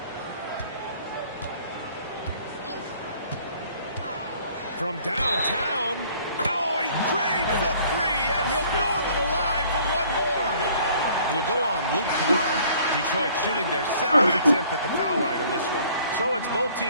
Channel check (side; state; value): both; inverted; correlation -0.56